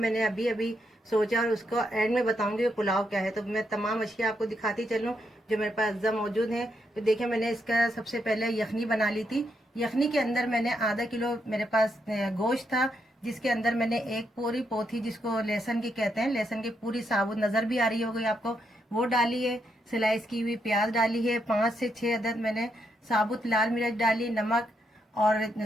अभी अभी सोचा और उसको एंड में बताऊंगी वो पुलाव क्या है। तो मैं तमाम अशिया आपको दिखाती चलूँ जो मेरे पास अज्जा मौजूद हैं। तो देखिए, मैंने इसका सबसे पहले यखनी बना ली थी। यखनी के अंदर मैंने आधा किलो मेरे पास गोश्त था, जिसके अंदर मैंने एक पूरी पोथी, जिसको लहसुन की कहते हैं, लहसुन की पूरी साबुत नज़र भी आ रही होगी आपको, वो डाली है। स्लाइस की हुई प्याज डाली है। 5 से 6 अदद मैंने साबुत लाल मिर्च डाली, नमक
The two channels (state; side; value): normal; both; correlation 0.79